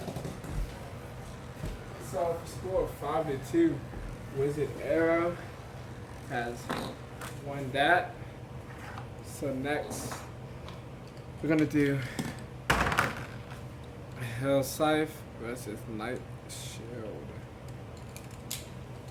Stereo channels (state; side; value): identical; both; correlation 1.00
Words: So score 5-2. Wizard Arrow has won that. So next, we're gonna do Hell Scythe versus Night Shield.